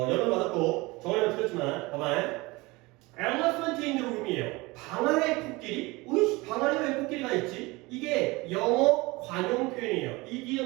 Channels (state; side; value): quieter; left; 23.1 dB